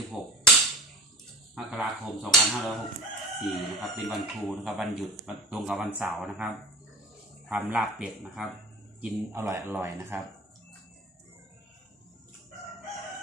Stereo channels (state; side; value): normal; both; correlation 0.37